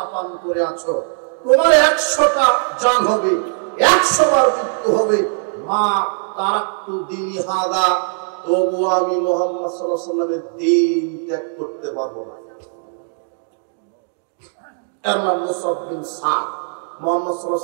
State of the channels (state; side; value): silent; left; digital silence